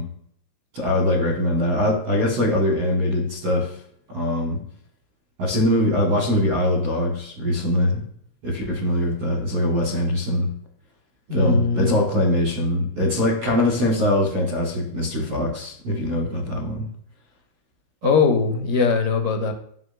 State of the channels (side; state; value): left; late; 17 ms